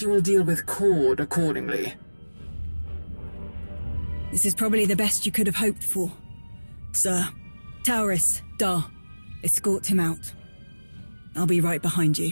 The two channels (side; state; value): both; inverted; correlation -1.00